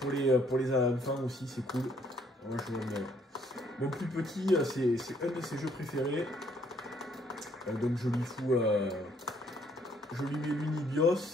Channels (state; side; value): normal; both; correlation 0.66